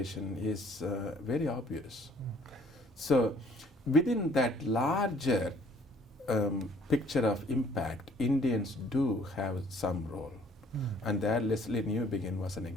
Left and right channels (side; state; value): both; normal; correlation 0.59